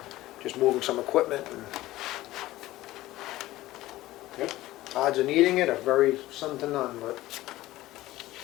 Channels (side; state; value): right; quieter; 16.6 dB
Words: just moving some equipment. And Yep. odds of needing it are very slim to none, but.